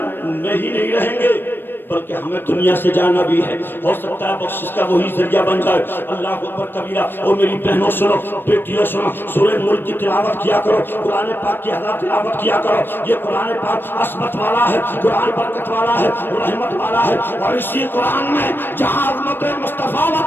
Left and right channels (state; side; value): late; right; 0.097 ms